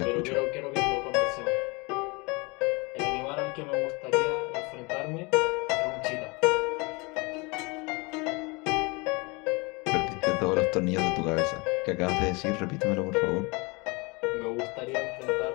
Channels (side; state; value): right; quieter; 27.6 dB